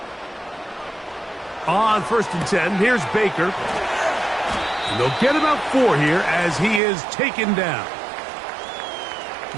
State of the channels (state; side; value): drops out; left; at 6.8 s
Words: On 1st and 10, here's Baker. And they'll get about 4 here as he is taken down.